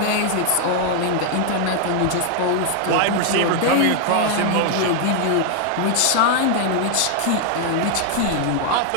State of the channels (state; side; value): different; both; correlation 0.00